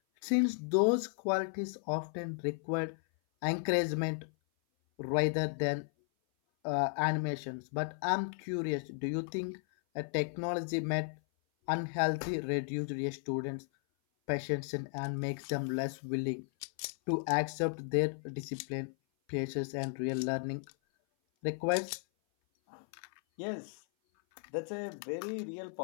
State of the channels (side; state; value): right; silent; 54 dB below the other